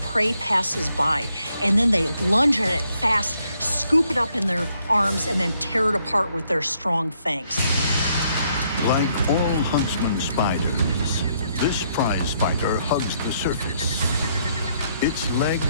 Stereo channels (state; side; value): inverted; both; correlation -0.72